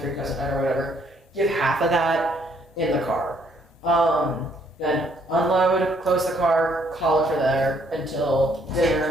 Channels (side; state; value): both; normal; correlation 0.67